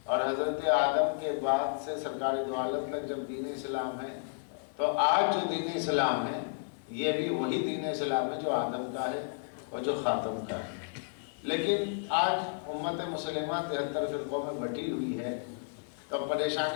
اور حضرت آدم کے بعد سے سرکار دو عالم تک جب دین اسلام ہے تو آج جو دین اسلام ہے یہ بھی وہی دین اسلام ہے جو آدم کا ہے اور جو خاتم کا ہے۔ لیکن آج امت مسلمہ 73 فرقوں میں بٹی ہوئی ہے، تو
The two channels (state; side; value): silent; right; digital silence